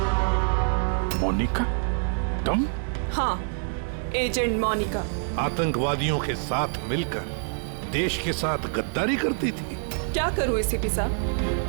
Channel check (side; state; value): left; silent; digital silence